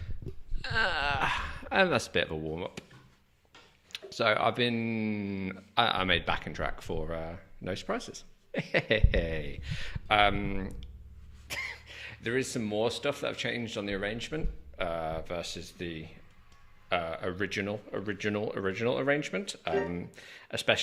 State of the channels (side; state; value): both; identical; correlation 1.00